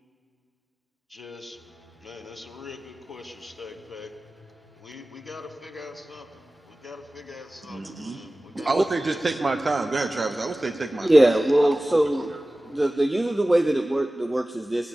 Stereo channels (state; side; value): normal; both; correlation 0.97